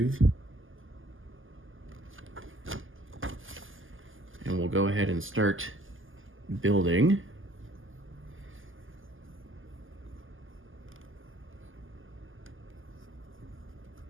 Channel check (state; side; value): late; left; 0.58 ms